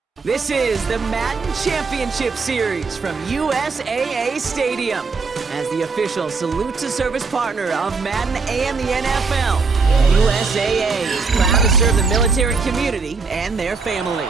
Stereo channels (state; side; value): quieter; left; 4.6 dB